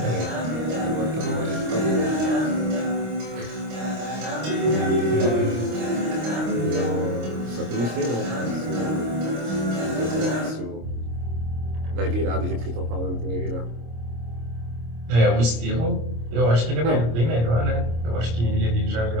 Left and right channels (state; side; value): late; left; 26 ms